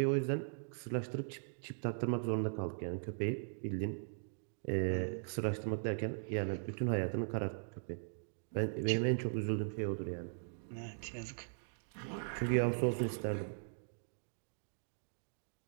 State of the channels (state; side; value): silent; left; digital silence